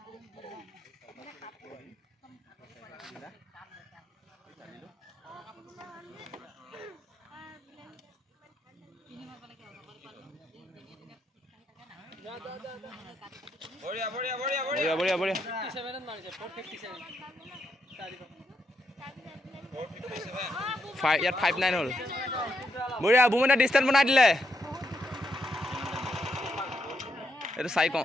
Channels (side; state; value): both; normal; correlation 0.80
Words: বঢ়িয়া বঢ়িয়া বঢ়িয়া বঢ়িয়া বঢ়িয়া বঢ়িয়া 57 মাৰিছে 457 ইয়াত 59 হ'ল বঢ়িয়া বুমনা ডিস্টেন্স বনাই দিলে এইটো চাই